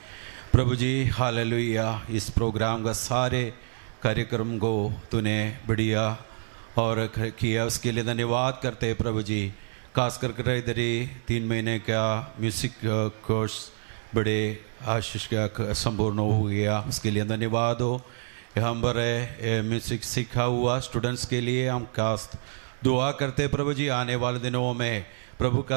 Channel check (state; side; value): silent; left; digital silence